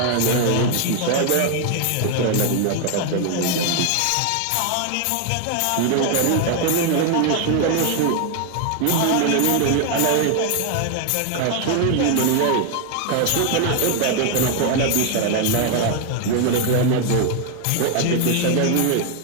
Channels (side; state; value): both; different; correlation 0.00